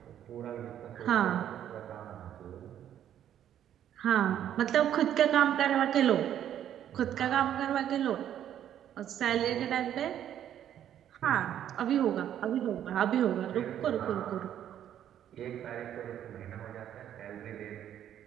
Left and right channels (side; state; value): left; quieter; 10.5 dB